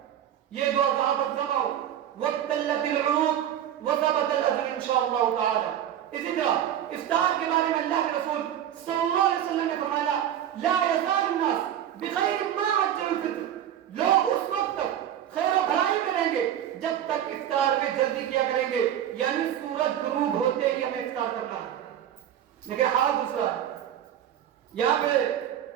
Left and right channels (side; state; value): left; quieter; 10.6 dB